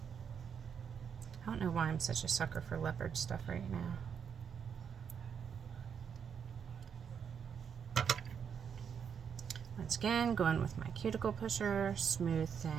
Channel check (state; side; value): quieter; left; 7.3 dB